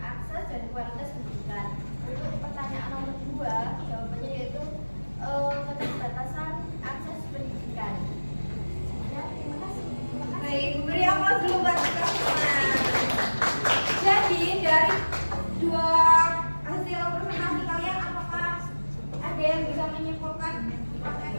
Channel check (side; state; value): both; inverted; correlation -1.00